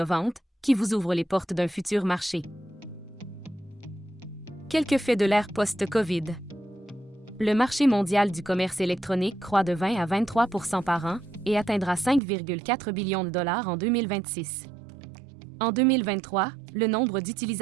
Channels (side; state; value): left; drops out; at 12.2 s